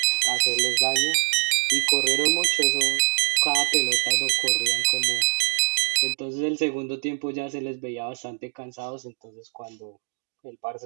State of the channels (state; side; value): silent; left; digital silence